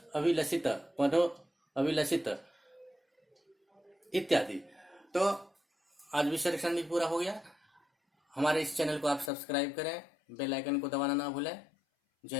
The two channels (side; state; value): right; drops out; at 9.3 s